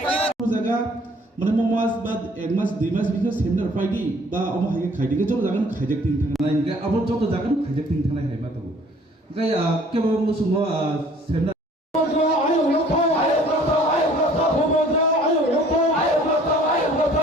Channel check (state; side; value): normal; both; correlation 0.55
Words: माने ममास बाद एक मास दुई मास बिदिनो सेमिनार फाइदि बा अम हाय खाइदिगे जत जागोन खाइजाक थिं थांनाय इनके अब जत जागोन खाइजाक थिं थांनाय हाय माथो गाय केबो मुसुङो seminar